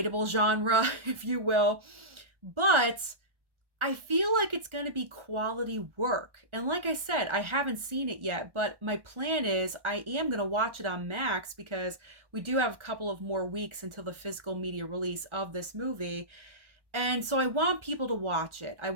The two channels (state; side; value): late; left; 1.3 ms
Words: genre, if you will, but I feel like it's going to be quality work. And like I said, I haven't seen it yet, but my plan is I am going to watch it on Max, because we do have a couple of more weeks until the physical media release of this movie. And so I want people to watch it. I